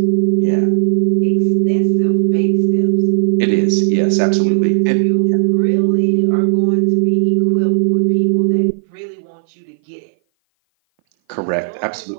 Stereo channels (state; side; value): silent; left; 57 dB below the other